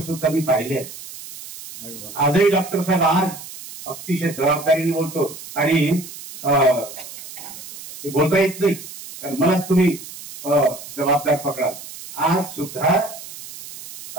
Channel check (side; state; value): right; noise; hiss, 14 dB below the sound